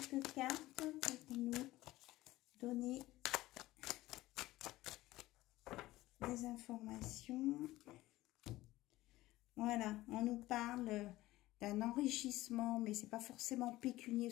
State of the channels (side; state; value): right; quieter; 17.3 dB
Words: cartes pour nous donner des informations. Voilà, on nous parle d'un enrichissement, mais c'est pas forcément pécunier,